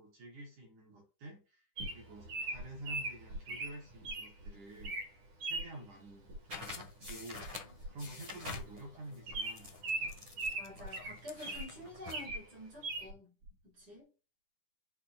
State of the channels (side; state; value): left; late; 10 ms